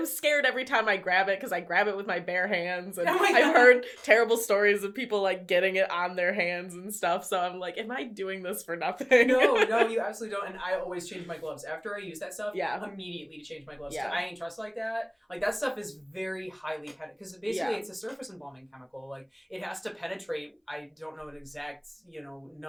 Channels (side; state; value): both; identical; correlation 1.00